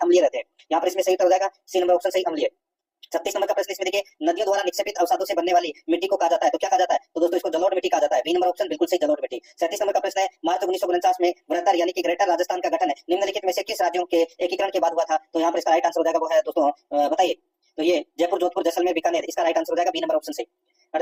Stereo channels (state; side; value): identical; both; correlation 1.00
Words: अम्लीय रहते हैं। यहाँ पर इसमें सही उत्तर हो जाएगा सी नंबर ऑप्शन सही, अम्लीय। 36 नंबर का प्रश्न, इसमें देखिए नदियों द्वारा निक्षेपित अवसादों से बनने वाली मिट्टी को कहा जाता है, तो क्या कहा जाता है? तो दोस्तों इसको जलोढ़ मिट्टी कहा जाता है। बी नंबर ऑप्शन बिल्कुल सही, जलोढ़ मिट्टी। 37 नंबर का प्रश्न है, मार्च 1949 में वृहत्तर यानी कि ग्रेटर राजस्थान का गठन निम्नलिखित में से किस राज्यों के एकीकरण के बाद हुआ था? तो यहाँ पर इसका राइट आंसर हो जाएगा वो है दोस्तों बताइए, तो ये जयपुर, जोधपुर, जैसलमेर, बीकानेर, इसका राइट आंसर हो जाएगा बी नंबर ऑप्शन सही।